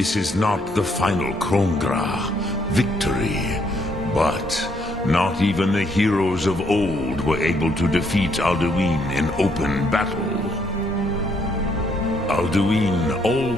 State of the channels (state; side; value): normal; both; correlation 0.71